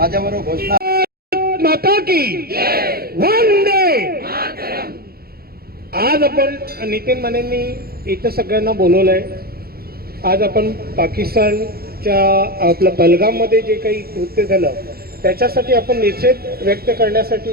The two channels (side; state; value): left; late; 0.44 ms